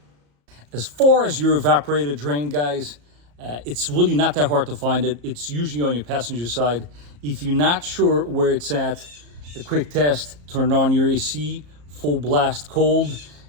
As far as your evaporator drain, guys, it's really not that hard to find it. It's usually on your passenger side. If you're not sure where it's at, a quick test, turn on your AC, full blast cold,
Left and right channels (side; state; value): left; late; 34 ms